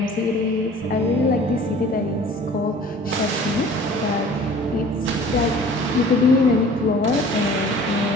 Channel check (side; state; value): both; normal; correlation 0.47